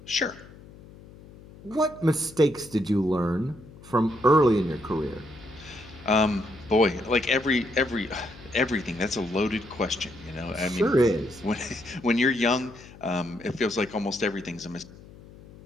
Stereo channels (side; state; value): left; noise; hum, 20 dB below the sound